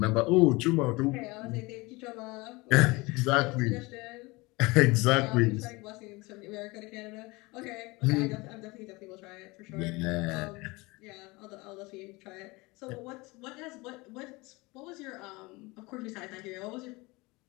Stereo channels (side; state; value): right; quieter; 23.8 dB